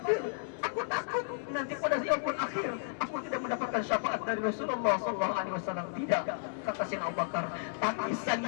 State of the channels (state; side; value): silent; right; 56 dB below the other